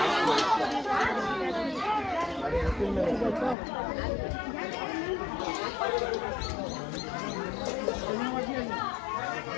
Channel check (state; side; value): drops out; right; at 3.6 s